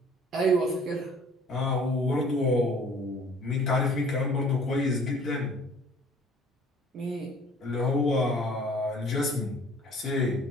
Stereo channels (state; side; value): normal; both; correlation 0.52